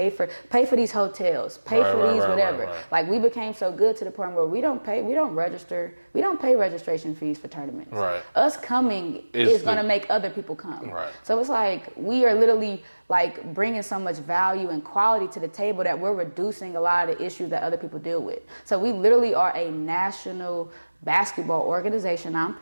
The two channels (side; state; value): both; inverted; correlation -1.00